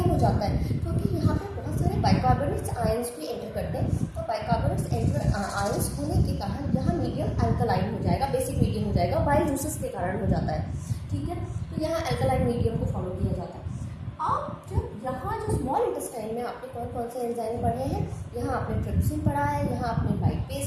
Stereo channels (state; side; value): identical; both; correlation 1.00